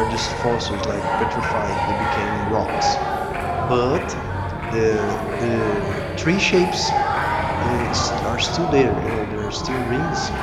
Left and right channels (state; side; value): identical; both; correlation 1.00